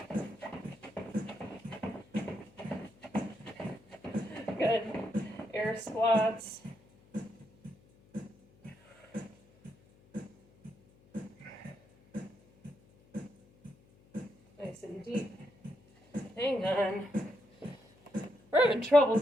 Good. Air squats. Nice and deep. Hang on. We're having trouble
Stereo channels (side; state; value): left; noise; hum, 28 dB below the sound